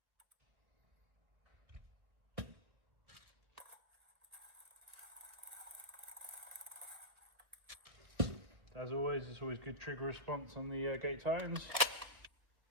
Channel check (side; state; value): left; late; 1.3 ms